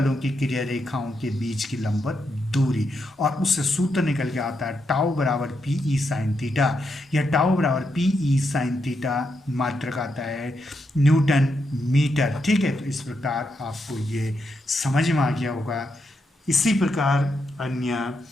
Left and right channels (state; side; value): normal; both; correlation 0.82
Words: की क्रिया रेखाओं के बीच की लंबवत दूरी, और उससे सूत्र निकल के आता है टाउ बराबर पी ई साइन थीटा। यह टाउ बराबर पी ई साइन थीटा मात्रक आता है न्यूटन मीटर। ठीक है, तो इस प्रकार आपको ये समझ में आ गया होगा। इसी प्रकार अन्य